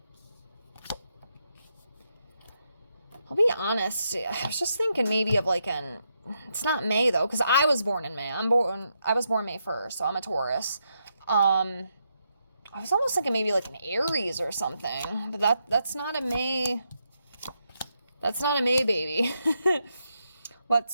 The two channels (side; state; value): both; inverted; correlation -0.81